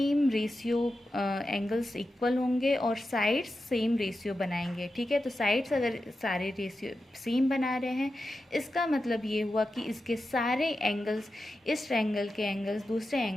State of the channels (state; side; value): normal; both; correlation 0.91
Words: रेशियो एंगल्स इक्वल होंगे और साइड्स सेम रेशियो बनाएंगे, ठीक है। तो साइड्स अगर सारे रेशियो सेम बना रहे हैं, इसका मतलब ये हुआ कि इसके सारे एंगल्स, इस ट्रायंगल के एंगल्स दूसरे